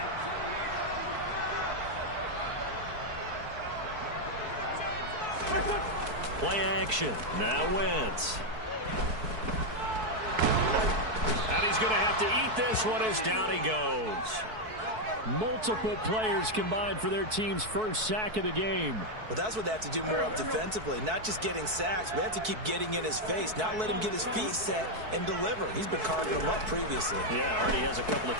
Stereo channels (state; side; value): late; left; 4.6 ms